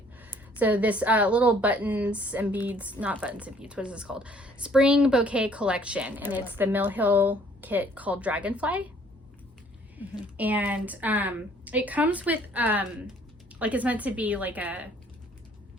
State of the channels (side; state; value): both; normal; correlation 0.59